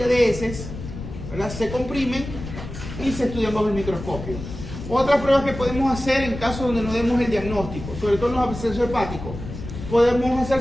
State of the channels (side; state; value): left; noise; rumble, 10 dB below the sound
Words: de heces, ¿verdad? Se comprimen y se estudian bajo el microscopio. Otras pruebas que podemos hacer en casos donde no demos el diagnóstico, sobre todo en los abscesos hepáticos, podemos hacer